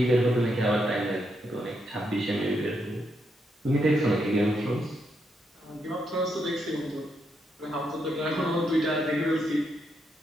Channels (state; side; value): normal; both; correlation 0.80